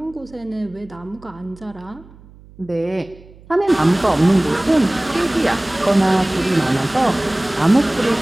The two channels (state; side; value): noise; right; hum, 23 dB below the sound